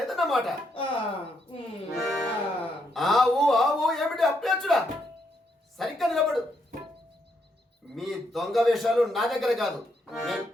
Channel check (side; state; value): both; normal; correlation 0.77